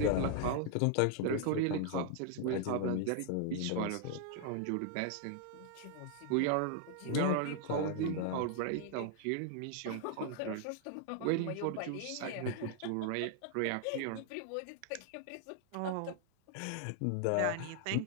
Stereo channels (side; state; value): both; different; correlation 0.00